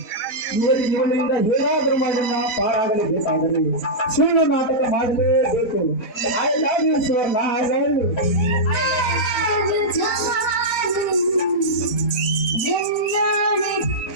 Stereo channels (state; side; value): late; right; 4.1 ms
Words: ಇವರಿಂದ ಹೇಗಾದರೂ ಮಾಡನ್ನ ಪಾರಾಗಲೇಬೇಕಾದರೆ ಸುಳ್ಳು ನಾಟಕ ಮಾಡಲೇಬೇಕು. I love you Suvarna, I love you.